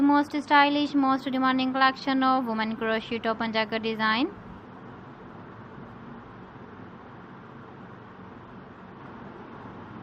most stylish, most demanding collection of women crochet top and jacket design.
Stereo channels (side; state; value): both; identical; correlation 1.00